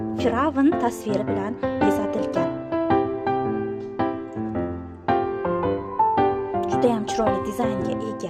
Firavn tasviri bilan bezatilgan. Juda ham chiroyli dizaynga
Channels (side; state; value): both; identical; correlation 1.00